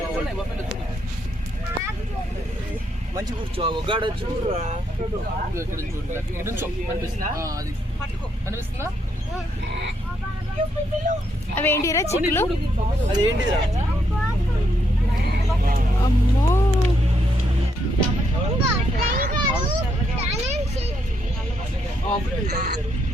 మంచి కూర్చో గాడ చూడరా కనిపిస్తుందా? అవేంటిరా చిక్కులు? అదేంటిరా? అమ్మో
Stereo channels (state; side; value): normal; both; correlation 0.76